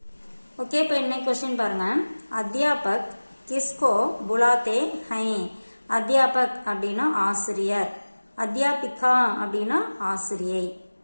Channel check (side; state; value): both; inverted; correlation -1.00